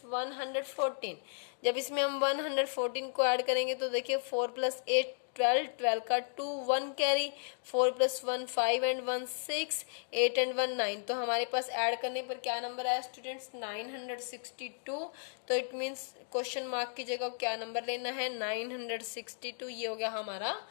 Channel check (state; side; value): silent; right; digital silence